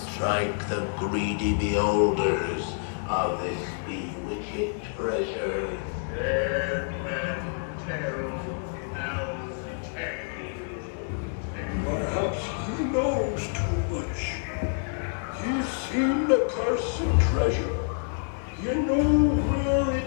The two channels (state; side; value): silent; right; 60 dB below the other